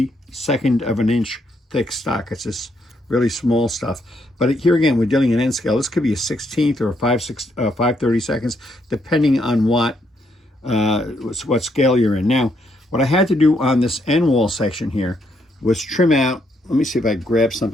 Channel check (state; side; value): normal; both; correlation 0.75